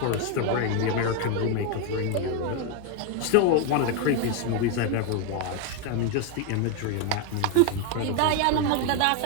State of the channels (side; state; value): both; different; correlation 0.01